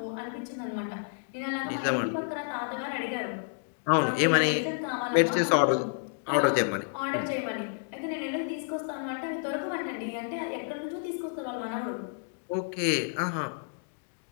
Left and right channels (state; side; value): silent; right; digital silence